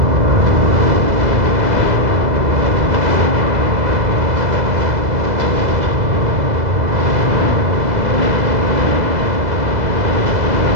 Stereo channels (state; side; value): late; left; 2.0 ms